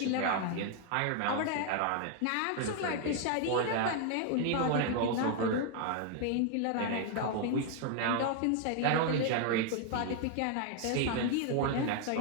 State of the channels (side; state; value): both; different; correlation 0.00